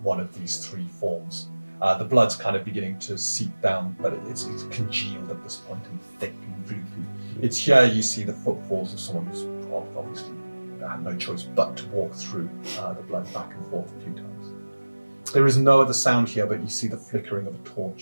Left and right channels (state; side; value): inverted; both; correlation -1.00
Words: one of these 3 forms. The blood's kind of beginning to seep down, but it's congealed at this point and thick and gloopy. It's here you see the footfalls of someone who's obviously had no choice but to walk through the blood back and forth a few times. There is no other sound here, but you see the flickering of a